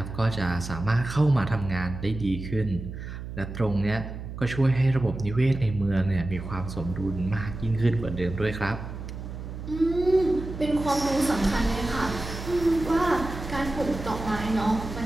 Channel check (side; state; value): right; noise; hum, 9 dB below the sound